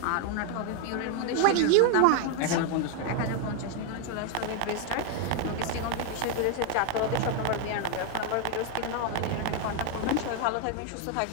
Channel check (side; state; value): both; different; correlation 0.01